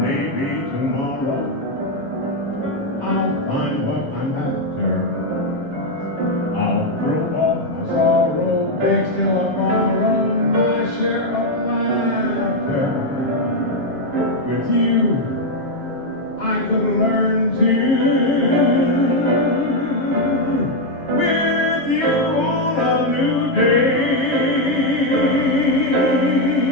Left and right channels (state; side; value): late; right; 7.4 ms